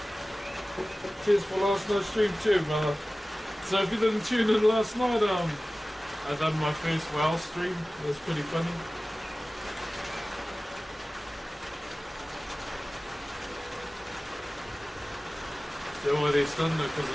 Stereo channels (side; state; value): both; normal; correlation 0.97